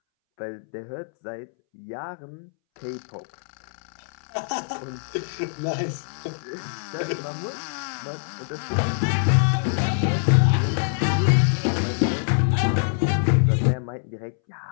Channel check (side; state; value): right; silent; 62 dB below the other